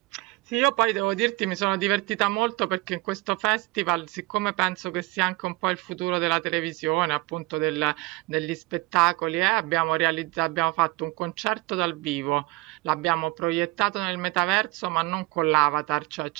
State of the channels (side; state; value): left; quieter; 22.1 dB